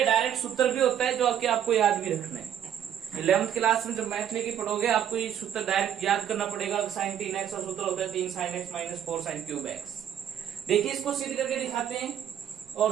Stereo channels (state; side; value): quieter; left; 9.7 dB